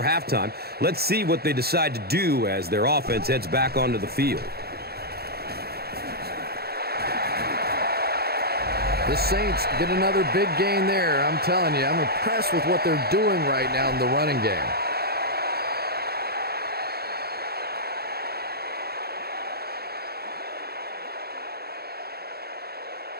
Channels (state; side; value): late; left; 0.46 ms